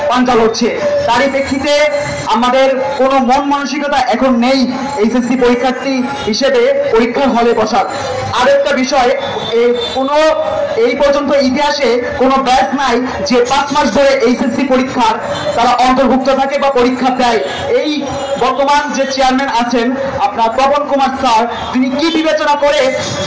পাঞ্জা হচ্ছে। তারই প্রেক্ষিতে আমাদের কোনো মন মানসিকতা এখন নেই এইচএসসি পরীক্ষার্থী হিসেবে পরীক্ষার হলে বসার। আরেকটা বিষয়, এই পর্যন্ত ইতিহাসে কোনো ব্যাচ নাই যে 5 মাস ধরে এইচএসসি পরীক্ষার তারা অন্তর্ভুক্ত থাকে বা পরীক্ষা দেয়। এই বর্তমান যে চেয়ারম্যান আছেন আপনার তপন কুমার স্যার, তিনি কি বিবেচনা করে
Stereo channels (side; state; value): both; identical; correlation 1.00